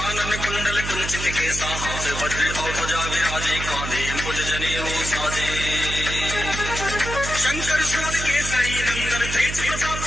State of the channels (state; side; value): noise; right; hum, 6 dB below the sound